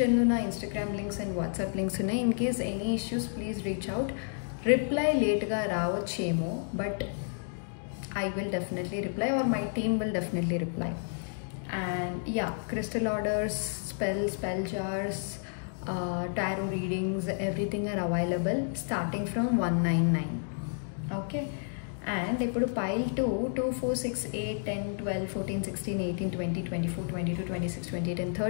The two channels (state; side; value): silent; right; digital silence